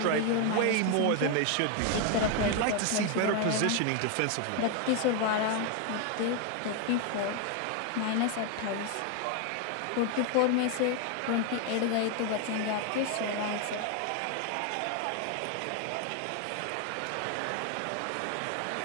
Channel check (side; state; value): both; different; correlation 0.01